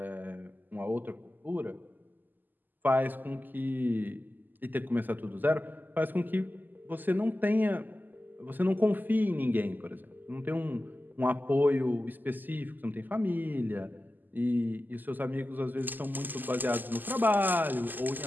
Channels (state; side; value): late; left; 0.087 ms